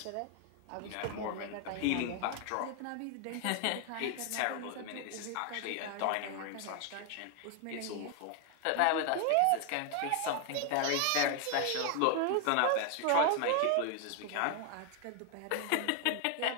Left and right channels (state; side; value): different; both; correlation 0.01